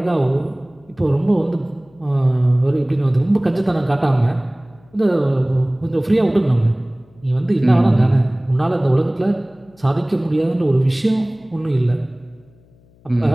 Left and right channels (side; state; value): left; noise; hum, 30 dB below the sound